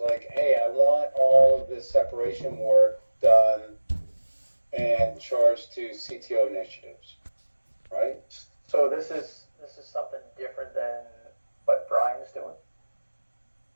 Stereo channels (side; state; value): both; inverted; correlation -1.00